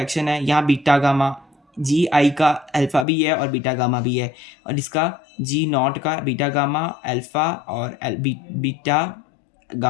है। यहाँ बीटा गामा, GI का अल्फा भी है और बीटा गामा भी है, और इसका G0 का बीटा गामा अल्फा और बीटा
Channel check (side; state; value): right; drops out; at 3.1 s